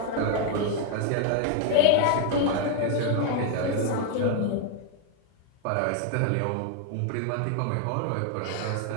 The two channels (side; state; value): both; different; correlation 0.00